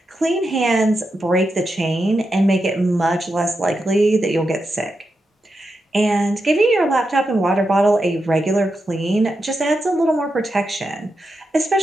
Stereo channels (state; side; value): normal; both; correlation 0.87